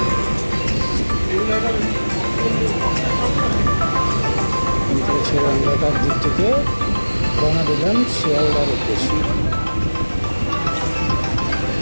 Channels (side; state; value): both; inverted; correlation -1.00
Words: আমরা তার দিক থেকে রওনা দিলাম শিয়ালদার উদ্দেশ্যে।